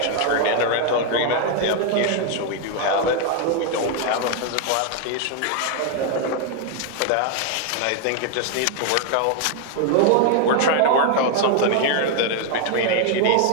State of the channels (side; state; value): both; different; correlation 0.00